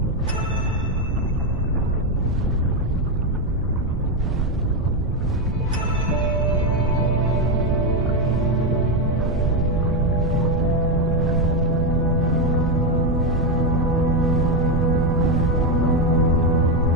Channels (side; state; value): both; normal; correlation 0.07